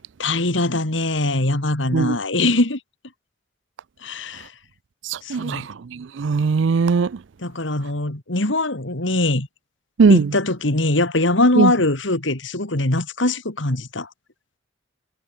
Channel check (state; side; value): normal; both; correlation 0.33